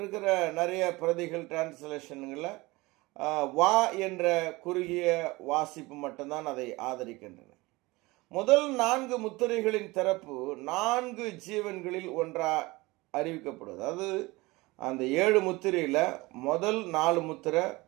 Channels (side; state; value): left; quieter; 22.0 dB